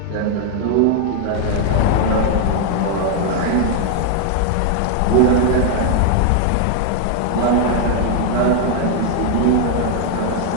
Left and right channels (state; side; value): different; both; correlation 0.00